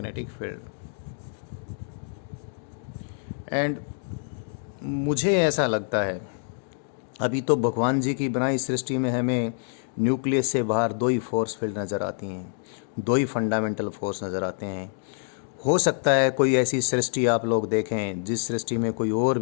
field. And मुझे ऐसा लगता है अभी तो भगवान जी की बनाई सृष्टि में हमें न्यूक्लियस से बाहर दो ही फोर्स फील्ड नज़र आती हैं, दो ही फंडामेंटल फोर्स नज़र आते हैं। हो सकता है कोई ऐसी सृष्टि आप लोग देखें जिस सृष्टि में कोई और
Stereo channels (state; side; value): silent; right; digital silence